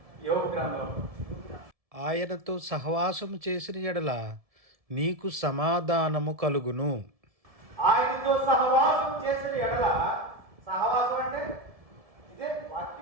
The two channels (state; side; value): late; left; 1.7 ms